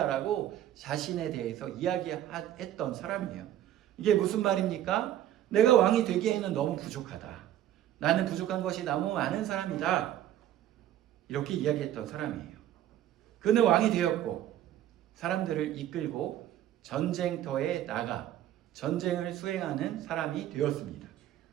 자신에 대해서 이야기했던 사람이에요. 이게 무슨 말입니까? 내가 왕이 되기에는 너무 부족하다. 나는 부족한 것이 너무 많은 사람이다. 이렇게 이야기했던 사람이에요. 그는 왕이 되었고 사람들을 이끌고 전쟁터에 나가 전쟁을 수행하는 사람이 되었습니다.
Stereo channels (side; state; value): left; quieter; 12.1 dB